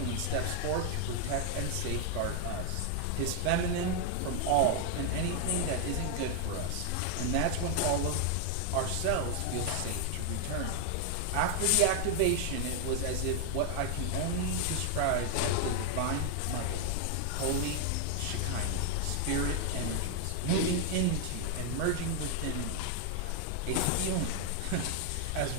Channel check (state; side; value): different; both; correlation 0.00